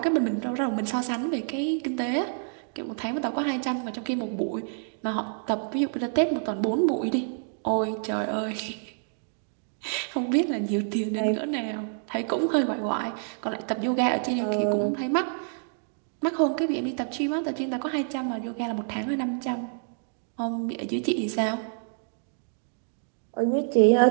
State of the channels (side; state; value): left; silent; digital silence